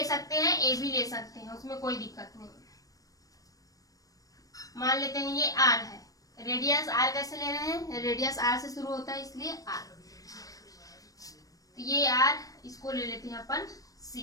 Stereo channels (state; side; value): late; right; 0.17 ms